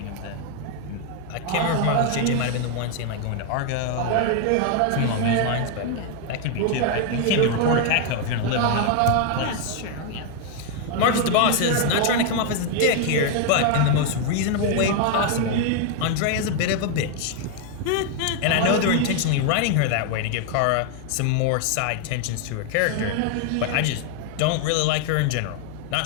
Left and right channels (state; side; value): different; both; correlation 0.00